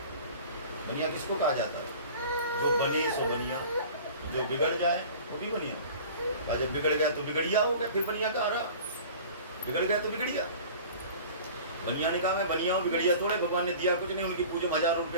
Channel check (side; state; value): both; inverted; correlation -0.42